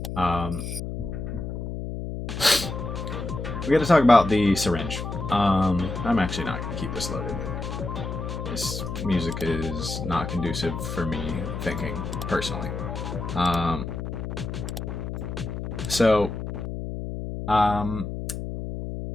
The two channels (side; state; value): left; noise; hum, 5 dB below the sound